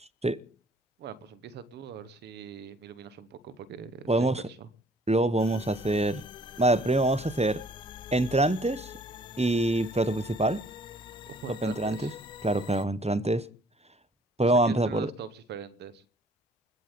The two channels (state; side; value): normal; both; correlation 0.58